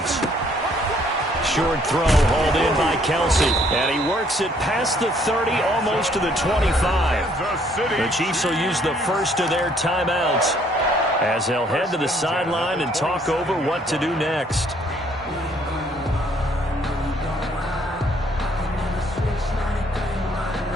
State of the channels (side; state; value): both; normal; correlation 0.64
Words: Short throw hauled in by Kelsey. And he works it past the 30, almost to the 25. The Chiefs will use the first of their timeouts as they'll head to the sideline and talk over what to do next.